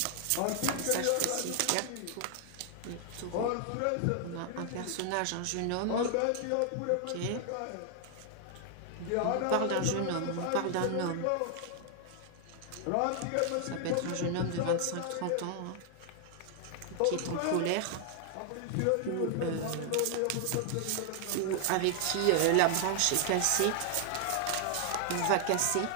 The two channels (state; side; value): different; both; correlation 0.00